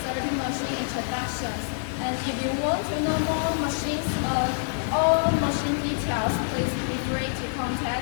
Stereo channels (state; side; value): silent; right; 61 dB below the other